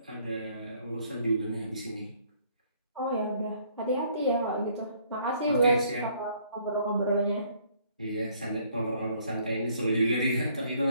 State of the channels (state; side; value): inverted; both; correlation -0.63